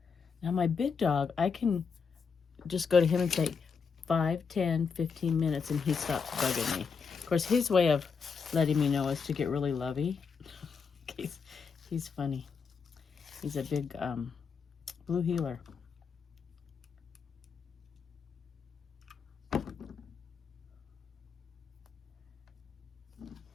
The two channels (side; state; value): right; quieter; 5.7 dB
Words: Now my big dog, I can just go to him and say 5, 10, 15 minutes and he stops bugging me. Of course, his way of letting me know is to get really lovey. He's funny. He's a big blue heeler.